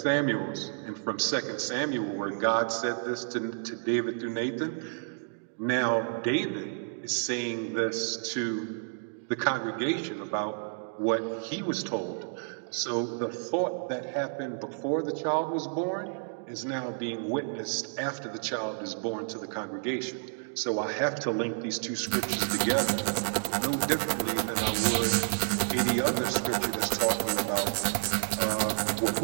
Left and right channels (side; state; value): left; silent; digital silence